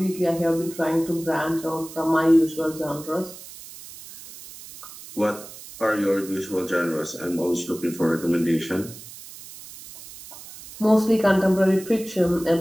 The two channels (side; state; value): right; noise; hiss, 16 dB below the sound